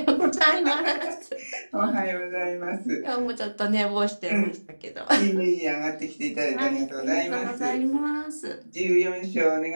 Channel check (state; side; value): inverted; both; correlation -1.00